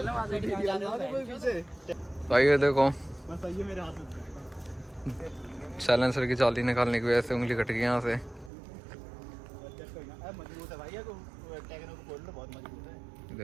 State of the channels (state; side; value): drops out; left; at 8.5 s